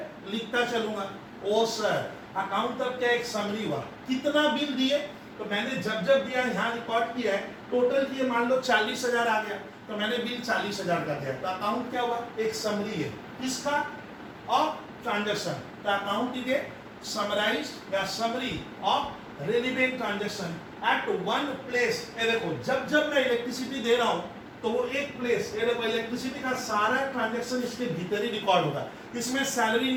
लिखता चलूंगा। ओ सर अकाउंट तब क्या एक समरी हुआ, कितना बिल दिए, तो मैंने जब जब दिया यहाँ रिकॉर्ड किया है, टोटल किए मान लो 40,000 आ गया, तो मैंने बिल 40,000 का दिया, तो अकाउंट क्या हुआ, एक समरी है किसका, ऑफ ट्रांजैक्शन। तो अकाउंट इज ए समराइज्ड या summary of relevant transaction at one place. ये देखो जब जब मैं इलेक्ट्रिसिटी दे रहा हूं, तो वो एक प्लेस, ये देखो इलेक्ट्रिसिटी का सारा ट्रांजैक्शन इसके भीतर ही रिकॉर्ड होगा, इसमें सैलरी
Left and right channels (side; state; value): both; identical; correlation 1.00